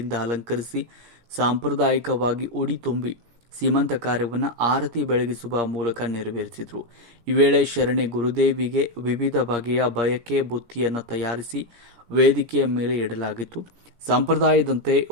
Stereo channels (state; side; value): late; left; 17 ms